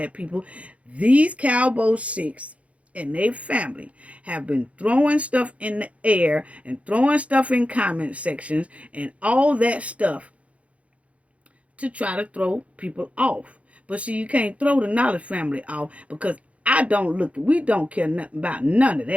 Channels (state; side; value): late; left; 0.064 ms